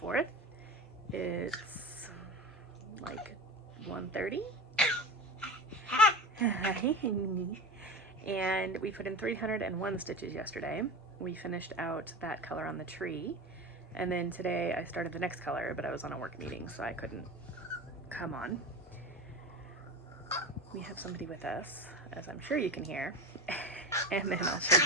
It's like 1:30. And we put in 301 stitches yesterday. We finished out that color on the tree. And then today I started the next color, but I was on a work meeting, so I couldn't come on. We have somebody with us, as I'm sure you can hear. And then I'll show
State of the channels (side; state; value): both; normal; correlation 0.28